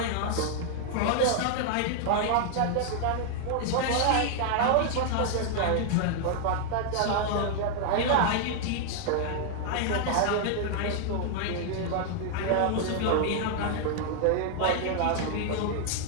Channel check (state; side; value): different; both; correlation 0.00